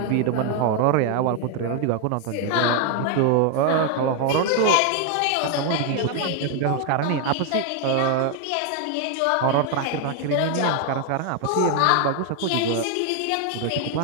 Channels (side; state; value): both; different; correlation 0.01